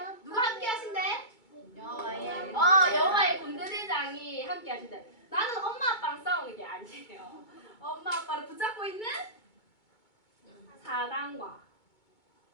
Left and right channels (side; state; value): right; late; 2.2 ms